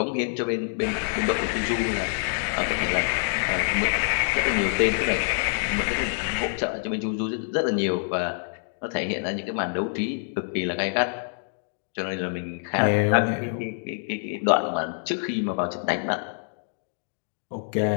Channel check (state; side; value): silent; right; 61 dB below the other